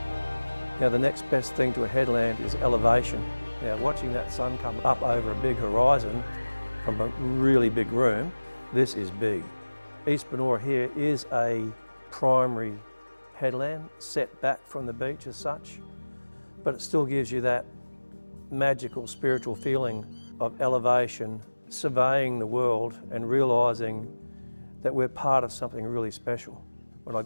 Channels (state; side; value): inverted; both; correlation -1.00